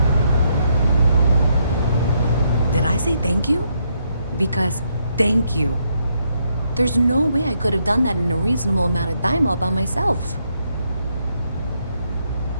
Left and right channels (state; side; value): inverted; both; correlation -0.76